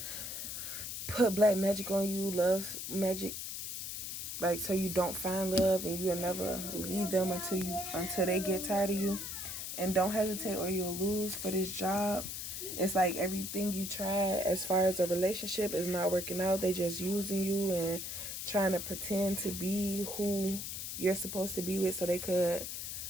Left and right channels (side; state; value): left; noise; hiss, 6 dB below the sound